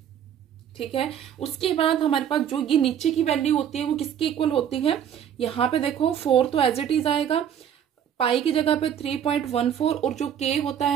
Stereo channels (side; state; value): left; quieter; 9.2 dB